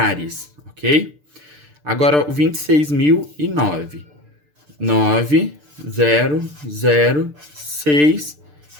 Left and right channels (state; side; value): late; left; 6.7 ms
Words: ok? Agora o 26.009. 9, 0, 0, 6